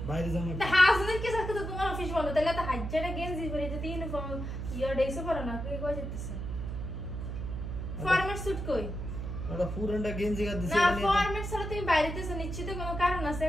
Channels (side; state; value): right; noise; hum, 5 dB below the sound